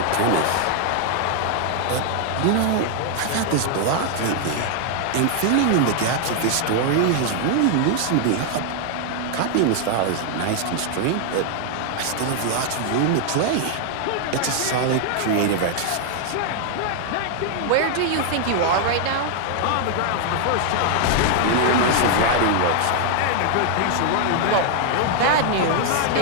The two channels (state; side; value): different; both; correlation 0.00